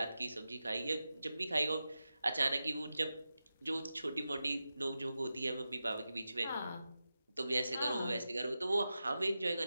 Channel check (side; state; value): both; inverted; correlation -0.91